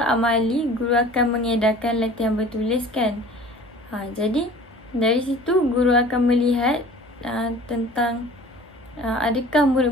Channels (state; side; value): normal; both; correlation 0.45